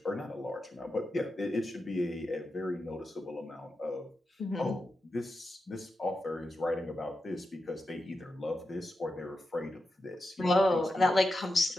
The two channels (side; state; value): both; normal; correlation 0.89